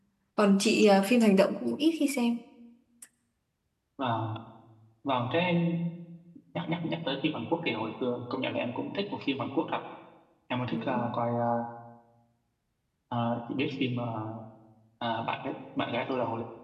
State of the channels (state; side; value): identical; both; correlation 1.00